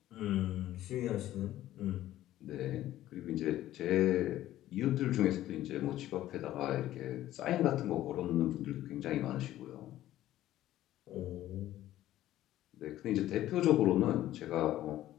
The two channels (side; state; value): right; quieter; 13.9 dB